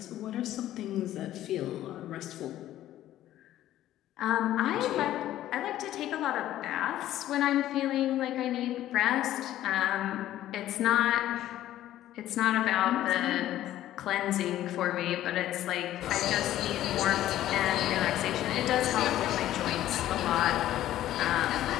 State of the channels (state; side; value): quieter; right; 13.3 dB